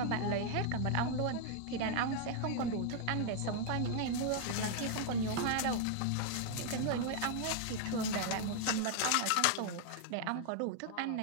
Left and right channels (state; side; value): different; both; correlation 0.00